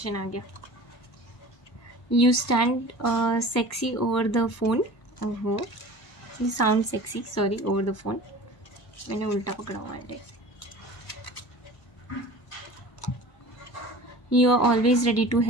आ गया। You stand sexy over the phone, ओहो, you sound sexy, sorry, over the phone, मैंने उल्टा पकड़ा हुआ है। You are always ready to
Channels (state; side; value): late; right; 1.1 ms